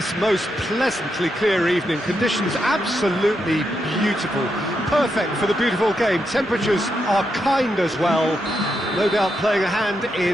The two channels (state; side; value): normal; both; correlation 0.83